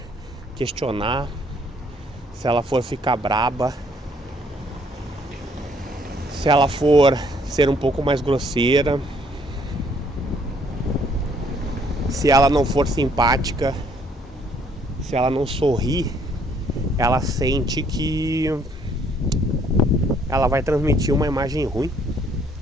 questionar, se ela for ficar braba, se ela for ser um pouco mais grosseira, se ela não for simpática, se ela não sorrir, ela sente que ela vai transmitir uma imagem ruim.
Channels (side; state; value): both; normal; correlation 0.65